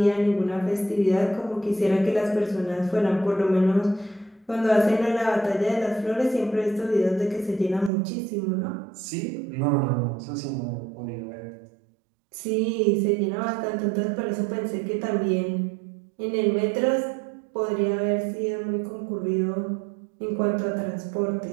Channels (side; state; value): left; drops out; at 7.9 s